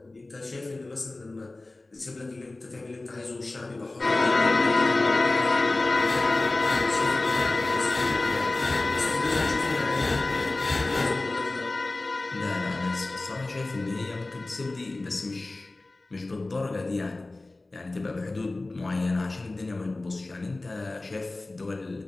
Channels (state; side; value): quieter; right; 3.0 dB